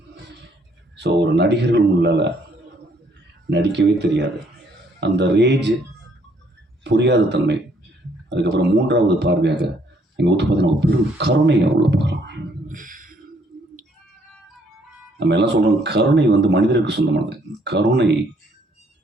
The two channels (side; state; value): both; normal; correlation 0.67